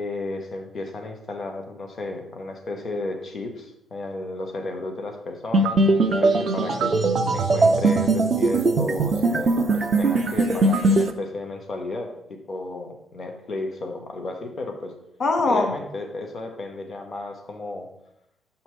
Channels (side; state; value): both; normal; correlation 0.68